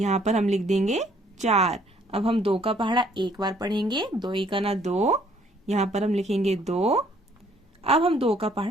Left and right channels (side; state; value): both; normal; correlation 0.63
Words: पर हम लिख देंगे 4। अब हम 2 का पहाड़ा 1 बार पढ़ेंगे। 2 इका ना 2, यहाँ पर हम लिखेंगे 2। अब हम 2 का